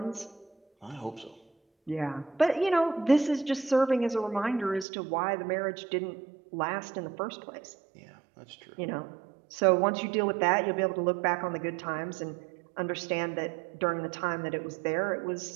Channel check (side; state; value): left; drops out; at 4.9 s